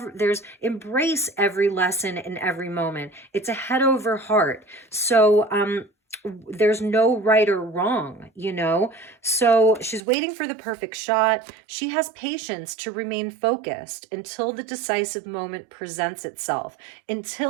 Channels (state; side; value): drops out; left; at 10.0 s